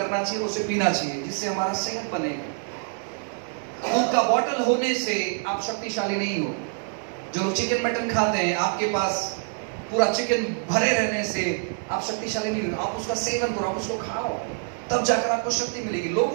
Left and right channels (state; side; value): silent; left; 61 dB below the other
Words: चाहिए, उसे पीना चाहिए, जिससे हमारा सेहत बनेगा। दूध का बोतल होने से आप शक्तिशाली नहीं हो। जो लोग चिकन मटन खाते हैं, आपके पास पूरा चिकन भरे रहने से आप शक्तिशाली नहीं हो। आप उसका सेवन करो, आप उसको खाओ, तब जाकर आपको शक्ति मिलेगी।